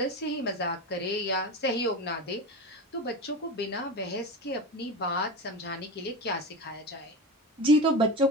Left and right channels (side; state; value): both; normal; correlation 0.25